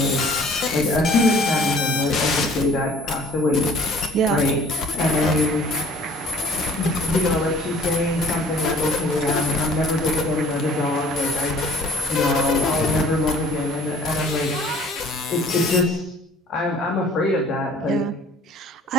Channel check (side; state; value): both; normal; correlation 0.53